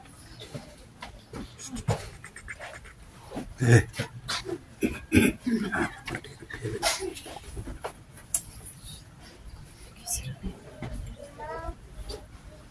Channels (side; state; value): both; identical; correlation 1.00